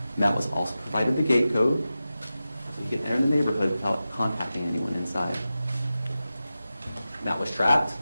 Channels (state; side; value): inverted; both; correlation -0.94